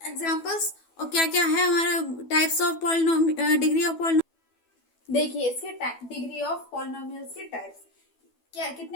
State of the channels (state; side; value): late; right; 12 ms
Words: एग्जांपल्स और क्या क्या है हमारा types of polynomial degree of polynomial. देखिए इसके डिग्री ऑफ पॉलिनोमियल्स के टाइप्स क्या,